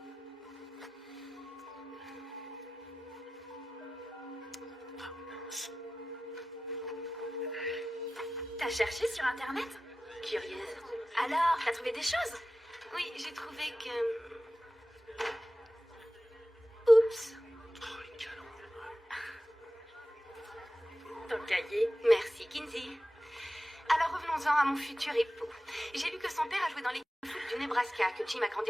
T'as cherché sur Internet? Curieuse. Alors, t'as trouvé des choses? Oui, j'ai trouvé que... Oups. Oh, les canons. Ton cahier. Merci, Kinsey. Alors revenons-en à mon futur époux. J'ai lu que son père a joué dans l'équipe de foot du Nebraska, que Jim a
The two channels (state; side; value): normal; both; correlation 0.95